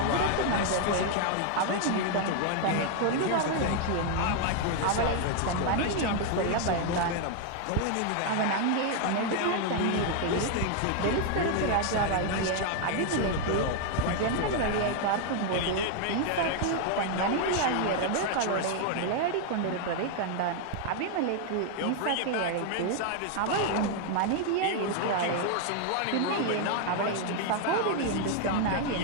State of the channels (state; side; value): different; both; correlation 0.00